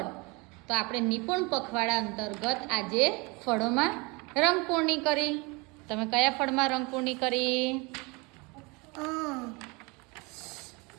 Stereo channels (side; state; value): left; quieter; 27.4 dB